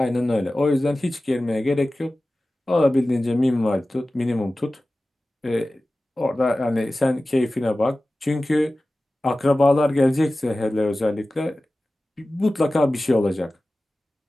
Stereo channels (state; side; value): normal; both; correlation 0.96